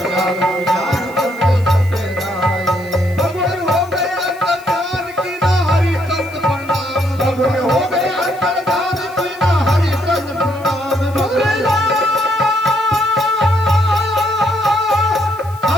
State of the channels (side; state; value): left; noise; hiss, 24 dB below the sound